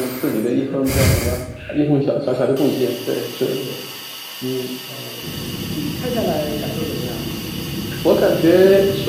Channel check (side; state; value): both; identical; correlation 1.00